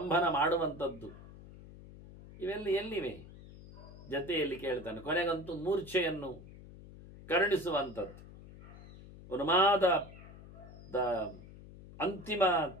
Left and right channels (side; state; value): left; noise; hum, 17 dB below the sound